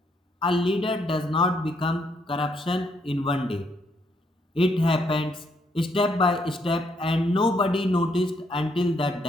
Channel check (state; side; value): normal; both; correlation 0.73